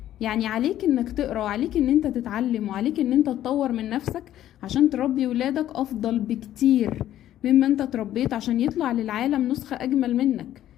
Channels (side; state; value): right; quieter; 12.4 dB